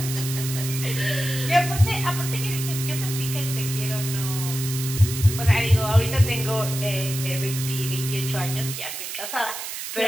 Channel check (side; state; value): right; noise; hiss, 7 dB below the sound